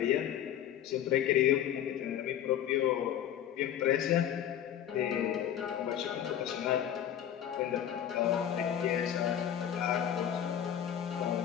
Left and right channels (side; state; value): right; quieter; 10.2 dB